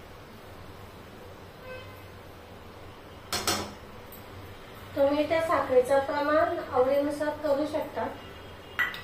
तुम्ही त्या साखरेचं प्रमाण आवडीनुसार करू शकता।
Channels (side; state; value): both; identical; correlation 1.00